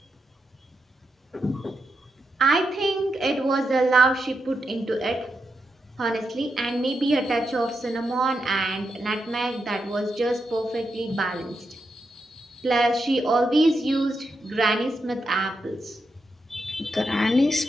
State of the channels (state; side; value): normal; both; correlation 0.85